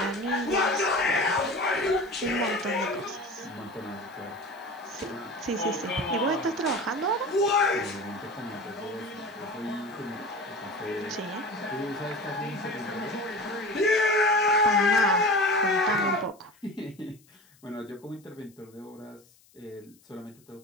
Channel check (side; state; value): left; noise; hiss, 30 dB below the sound